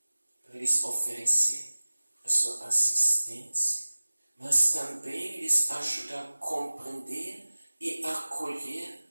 para lhes oferecer a sua assistência, mas também lhes ajudar a compreender e acolher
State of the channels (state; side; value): inverted; both; correlation -1.00